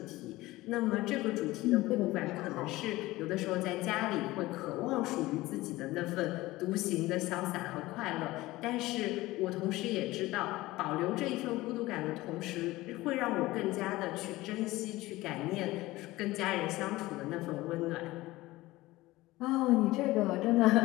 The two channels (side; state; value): right; quieter; 18.7 dB